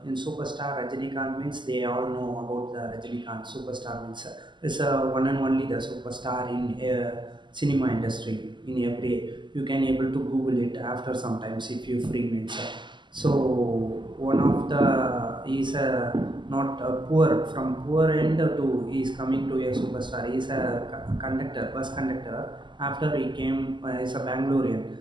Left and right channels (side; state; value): left; late; 0.22 ms